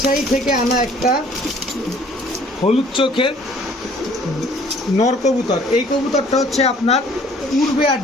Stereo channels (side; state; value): both; normal; correlation 0.56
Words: থেকে আনা একটা হলুদ চোখের নর কবুতর। এই কবুতরটা হচ্ছে আপনার উড়বে আর